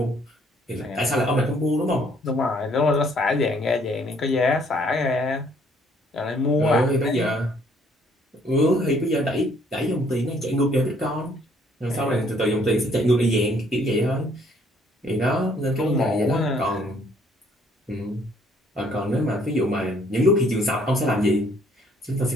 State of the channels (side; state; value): both; normal; correlation 0.63